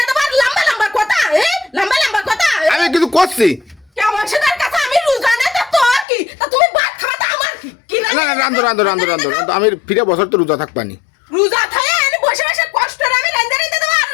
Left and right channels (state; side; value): drops out; right; at 6.1 s